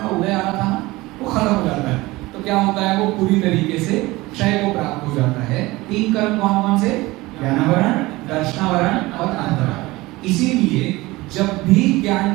उदय आ रहा था वो खत्म हो जाता है, तो क्या होता है? वो पूरी तरीके से क्षय को प्राप्त हो जाता है। 3 कर्म कौन कौन से? ज्ञानावरण, दर्शनावरण और अंतराय। इसीलिए जब भी ज्ञान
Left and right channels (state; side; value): quieter; left; 20.4 dB